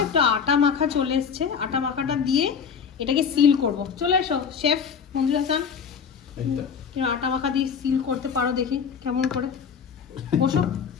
একটু আটা মাখা চলে এসছে, আটা মাখাটা দিয়ে এটাকে সিল করব। চলে এসো শেফ মঞ্জুর হাসান, আটা মাখা দিয়ে সিল করতে পারো, দেখি কেমন করে। বসো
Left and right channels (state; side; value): quieter; right; 6.7 dB